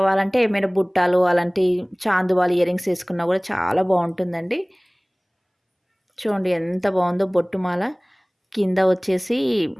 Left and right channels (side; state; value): both; identical; correlation 1.00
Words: ఏమైనా బుట్టాలు అలాంటి చాందువాలు ఇయరింగ్స్ వేసుకున్నా కూడా చాలా బాగుంటుందండి. చూడండి ఎంత బాగుందో బొట్టుమాల. కింద వచ్చేసి